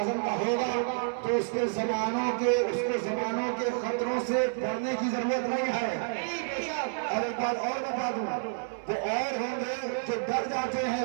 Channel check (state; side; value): silent; left; 58 dB below the other